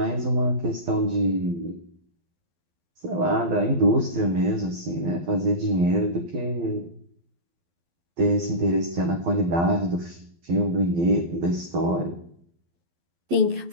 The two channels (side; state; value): left; late; 12 ms